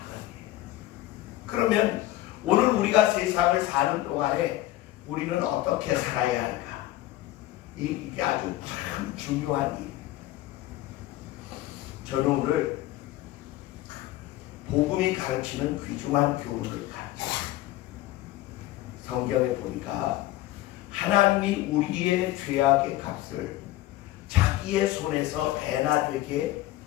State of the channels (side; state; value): right; quieter; 15.6 dB